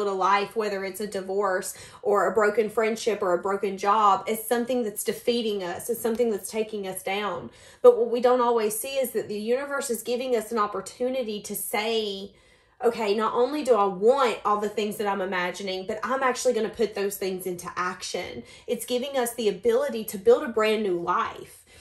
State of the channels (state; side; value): identical; both; correlation 1.00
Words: a life, whether it's a divorce or a broken friendship or a broken job, as something that's defeating us, as something that's taking us down. But what we don't always see is that the universe is giving us an opportunity to say, okay, not only do I want all the things that I'm imagining, but I'm actually going to put those things into action. It's giving us the ability to build a brand new life.